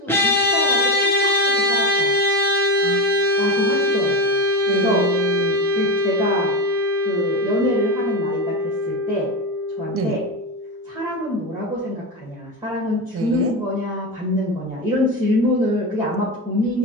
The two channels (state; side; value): normal; both; correlation 0.17